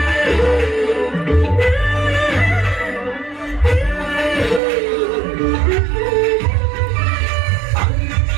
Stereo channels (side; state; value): left; drops out; at 4.6 s